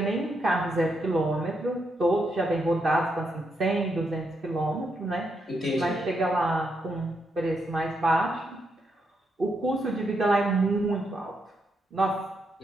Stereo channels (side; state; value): both; normal; correlation 0.80